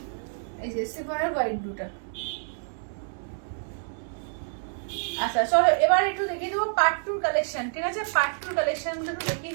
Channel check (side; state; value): left; silent; 59 dB below the other